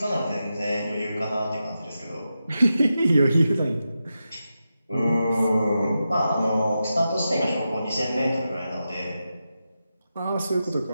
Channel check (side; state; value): both; inverted; correlation -0.89